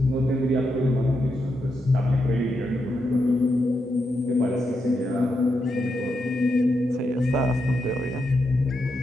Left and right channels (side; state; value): both; normal; correlation 0.84